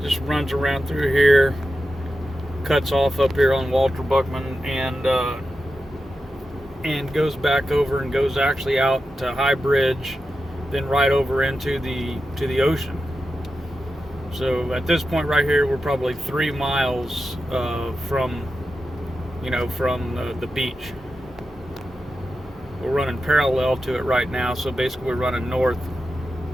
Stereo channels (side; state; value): both; normal; correlation 0.90